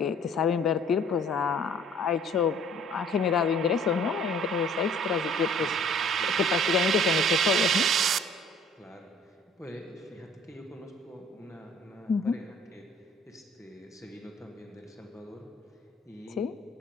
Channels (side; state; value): both; normal; correlation 0.54